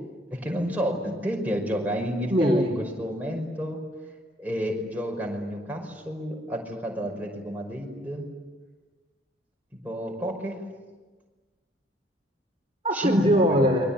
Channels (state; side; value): normal; both; correlation 0.62